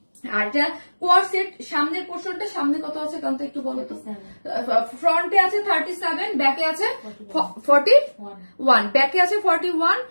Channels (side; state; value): both; inverted; correlation -1.00